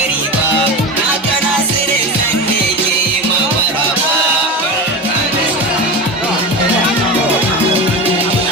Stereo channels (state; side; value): normal; both; correlation 0.24